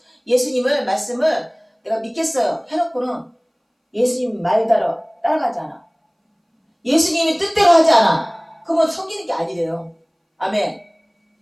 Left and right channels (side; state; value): both; identical; correlation 1.00